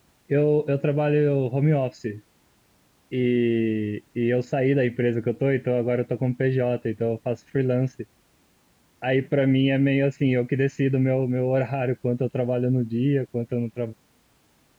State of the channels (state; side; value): identical; both; correlation 1.00